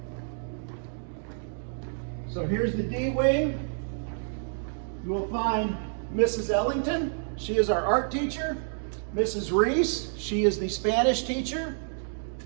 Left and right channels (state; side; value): silent; left; digital silence